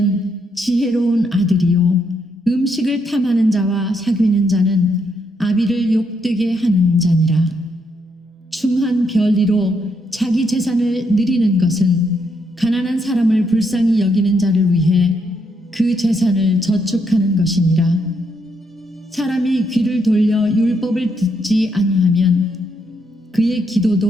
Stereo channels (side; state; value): both; normal; correlation 0.76